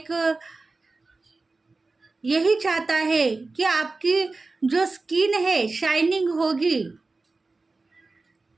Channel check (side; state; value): left; quieter; 3.6 dB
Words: यही चाहता है कि आपकी जो स्किन है शाइनिंग होगी,